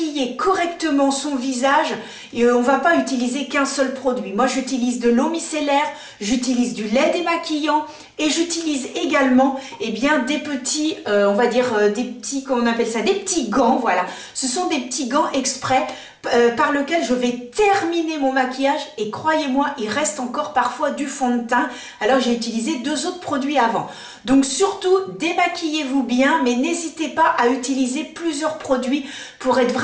correctement son visage, on ne va pas utiliser qu'un seul produit. Moi j'utilise de l'eau micellaire, j'utilise du lait démaquillant et j'utilise également eh bien, des petits, on va dire des petits, comment on appelle ça, des petits gants, voilà. Ce sont des petits gants exprès par lequel je vais terminer mon maquillage et croyez-moi, il reste encore parfois du fond de teint. Alors j'ai utilisé deux autres produits avant. Donc surtout, démaquillez-vous bien, mais n'hésitez pas à utiliser plusieurs produits pour être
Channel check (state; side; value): identical; both; correlation 1.00